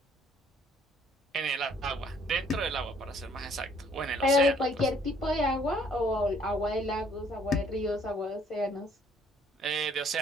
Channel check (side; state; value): both; normal; correlation 0.62